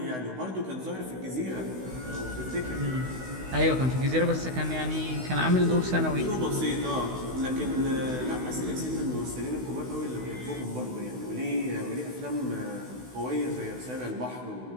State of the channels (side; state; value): left; late; 16 ms